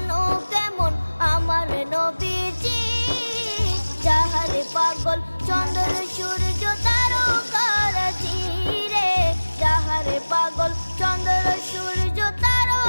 কেমন আমার নবীজি, যাহার পাগল চন্দ্র সূর্য তারকারাজি রে, যাহার পাগল চন্দ্র সূর্য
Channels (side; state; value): both; inverted; correlation -1.00